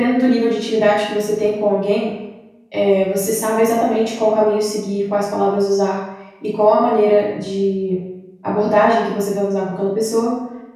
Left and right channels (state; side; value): identical; both; correlation 1.00